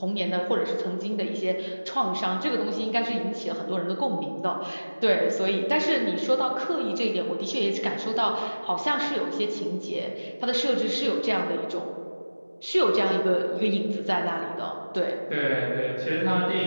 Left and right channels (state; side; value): inverted; both; correlation -1.00